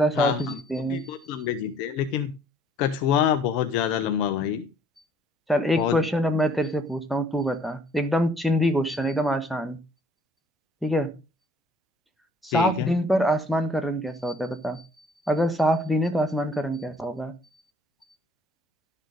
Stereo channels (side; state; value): both; normal; correlation 0.59